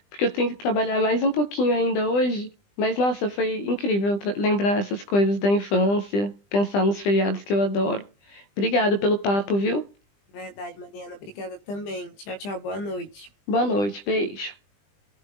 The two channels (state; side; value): late; right; 20 ms